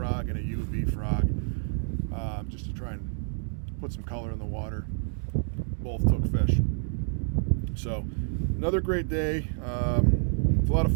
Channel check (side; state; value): left; silent; digital silence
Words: and a UV frog, just to try and put some color in the water. Both took fish. So another great day. It's a lot of